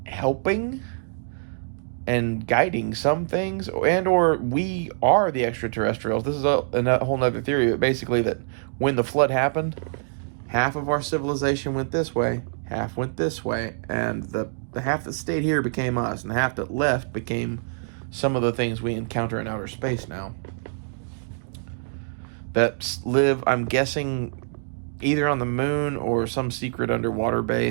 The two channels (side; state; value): left; silent; digital silence